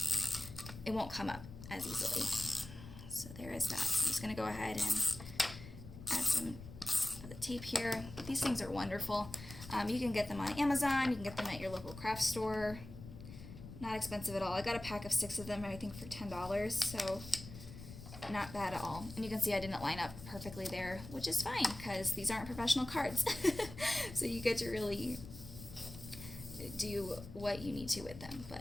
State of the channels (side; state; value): left; noise; rumble, 13 dB below the sound